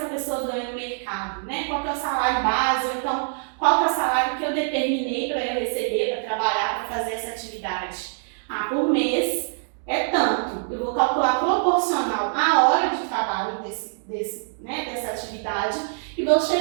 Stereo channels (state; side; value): silent; left; digital silence